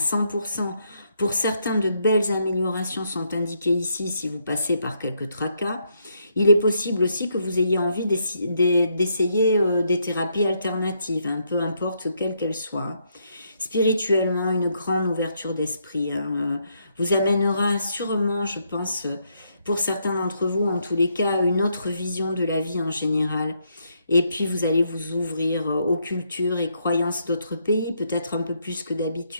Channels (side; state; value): both; inverted; correlation -0.76